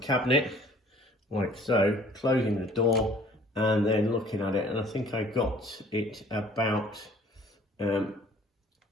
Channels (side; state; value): both; normal; correlation 0.53